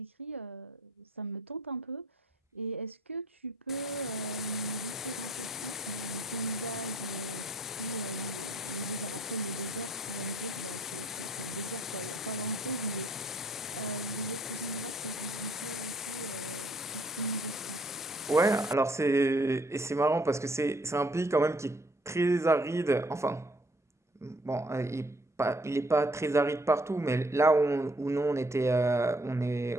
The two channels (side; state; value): both; normal; correlation 0.62